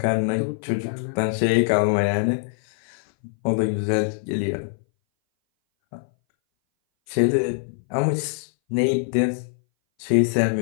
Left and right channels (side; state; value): right; silent; 61 dB below the other